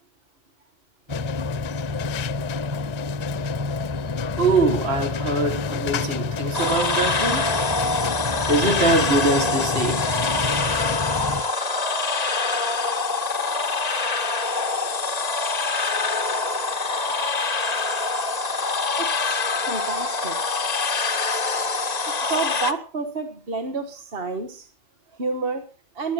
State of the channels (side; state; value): left; late; 1.9 ms